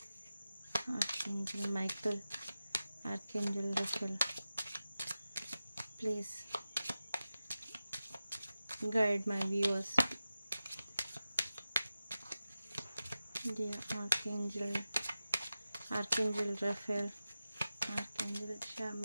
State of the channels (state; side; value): inverted; both; correlation -0.94